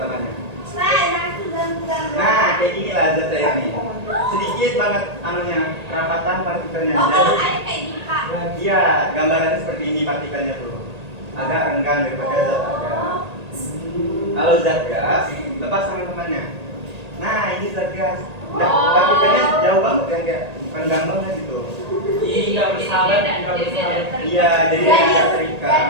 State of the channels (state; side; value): late; left; 1.8 ms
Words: temannya. Nah, kayak gini lah zat cair nih. Sedikit banget anunya, kerapatan partikelnya. Oh, kalau Jadi, air kayak gini Pak. iya, gambarannya seperti ini partikelnya tuh. Agak renggang daripada zat padat. Kalau zat gas, lepas tangan temannya. Nah, ini zat gas. Nah, partikelnya jauh banget kan, kayak renggang banget gitu. Iya, bersahabat, nggak bersahabat. Iya, jadi agak terikat.